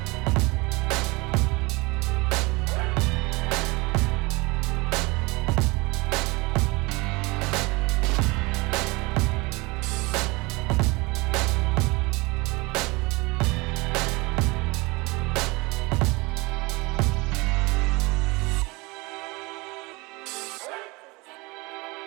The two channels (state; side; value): quieter; left; 24.8 dB